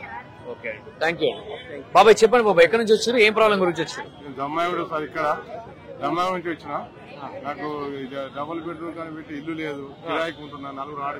Okay, thank you. బాబాయ్ చెప్పండి బాబాయ్, ఎక్కడి నుంచి వచ్చారు, ఏం ప్రాబ్లం గురించి వచ్చారు? దమ్మాయిడు సార్, ఇక్కడ దమ్మాయి నుంచి వచ్చిన. నాకు డబుల్ బెడ్రూమ్ కానీ పెట్టి ఇల్లు లేదు, కిరాయికి ఉంటున్నా. 4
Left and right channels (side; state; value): both; identical; correlation 1.00